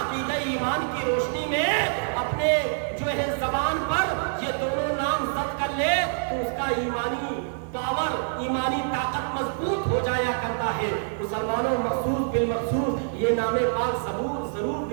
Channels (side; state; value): left; silent; digital silence